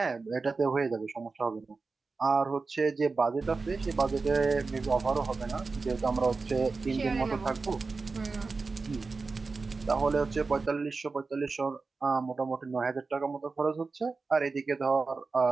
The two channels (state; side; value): quieter; left; 4.2 dB